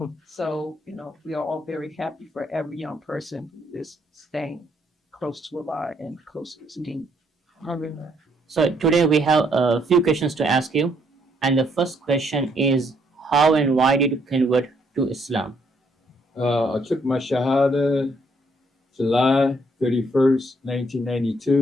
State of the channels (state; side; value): normal; both; correlation 0.70